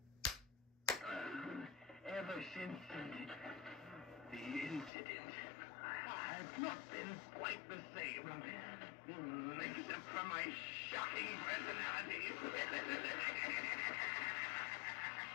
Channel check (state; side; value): drops out; right; at 4.9 s